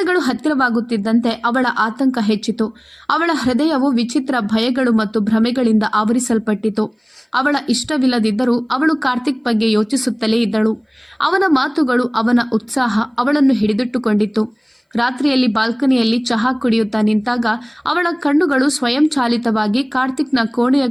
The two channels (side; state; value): both; identical; correlation 1.00